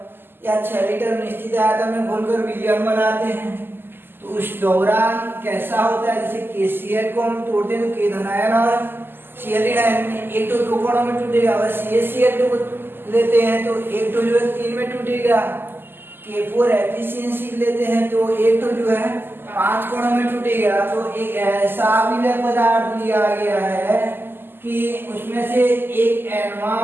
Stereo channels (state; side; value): late; left; 0.099 ms